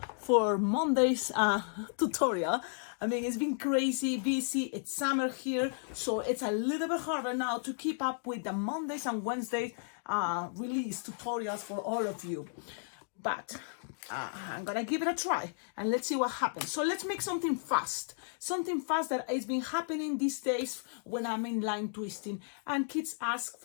for Monday's tutorial. I mean, it's been crazy busy. It's summer here, so it's a little bit harder now to keep up with the Mondays and Wednesdays release tutorials for all of you. But I'm gonna give it a try and let's see what happens. So let's make something fast that has been happening these days when I'm in line twisting and kids ask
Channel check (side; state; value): right; silent; digital silence